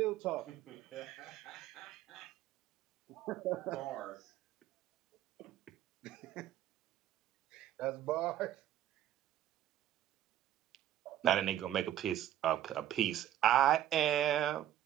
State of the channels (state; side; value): quieter; left; 12.1 dB